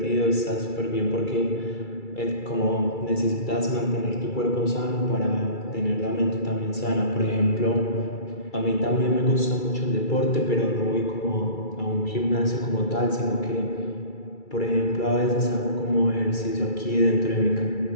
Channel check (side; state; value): right; late; 2.3 ms